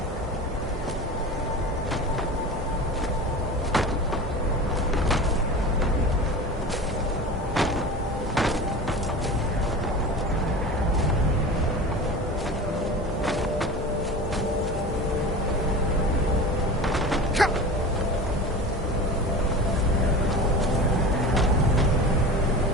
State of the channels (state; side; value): normal; both; correlation 0.33